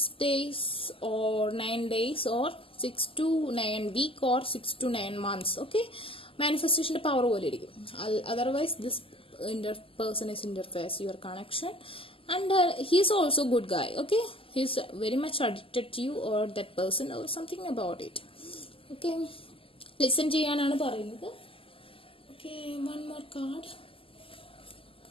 days or 9 days or 6 to 9 week or 6 to 9 months. Okay, മാനിഫെസ്റ്റേഷന്റെ പവർ പോലെ ഇരിക്കും. Otherwise this person is interface your connection and he is also good guy. Okay, he is very much addicted to you or that person or something about it. Okay, listen ചെയ്യാനാണ് പറയുന്നത്. Okay, one more card.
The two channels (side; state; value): right; late; 0.26 ms